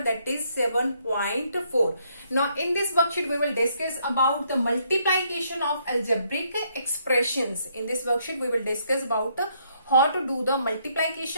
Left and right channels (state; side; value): inverted; both; correlation -0.71